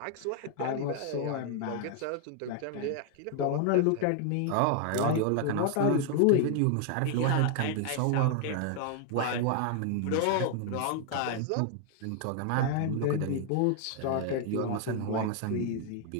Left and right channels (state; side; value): different; both; correlation 0.00